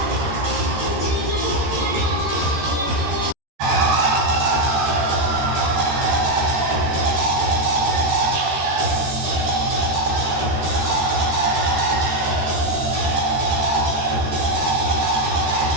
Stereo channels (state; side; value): late; left; 13 ms